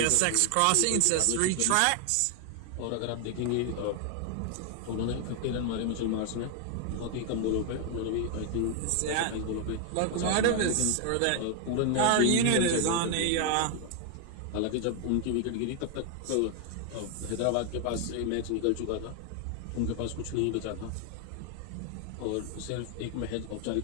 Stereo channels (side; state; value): both; different; correlation 0.00